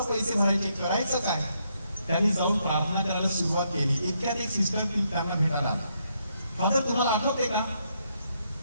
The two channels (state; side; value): inverted; both; correlation -0.76